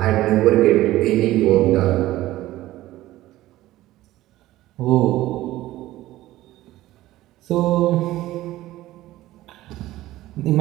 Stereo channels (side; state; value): left; quieter; 16.0 dB